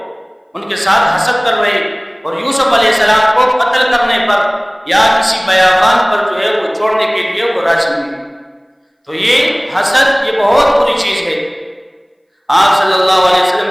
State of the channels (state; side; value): identical; both; correlation 1.00